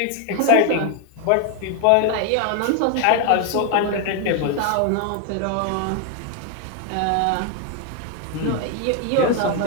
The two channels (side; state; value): both; different; correlation 0.00